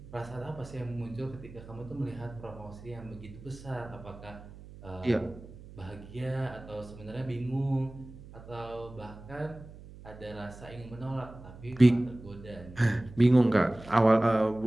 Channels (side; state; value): right; noise; hum, 17 dB below the sound